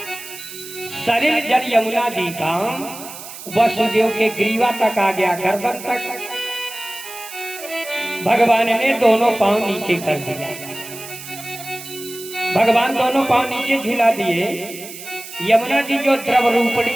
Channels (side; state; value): right; noise; hiss, 13 dB below the sound